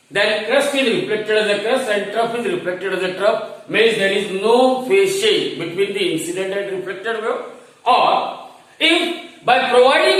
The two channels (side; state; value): both; identical; correlation 1.00